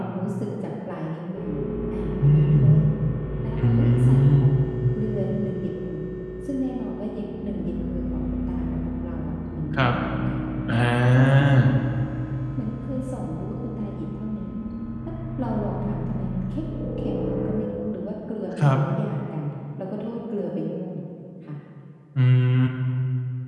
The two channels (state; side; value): identical; both; correlation 1.00